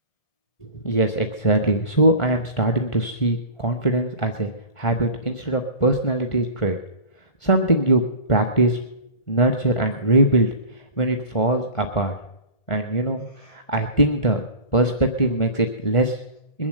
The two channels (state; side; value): late; right; 1.4 ms